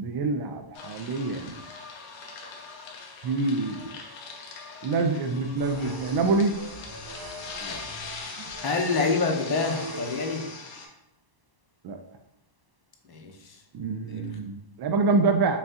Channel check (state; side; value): late; left; 1.0 ms